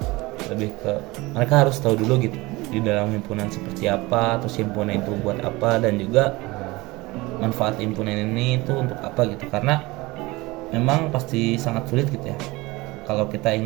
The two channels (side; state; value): left; quieter; 21.9 dB